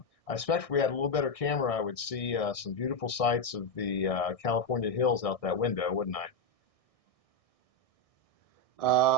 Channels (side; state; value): right; late; 1.6 ms